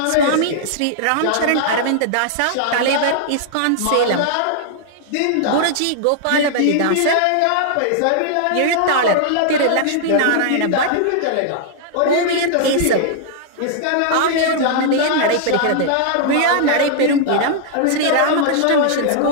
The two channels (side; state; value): both; different; correlation -0.01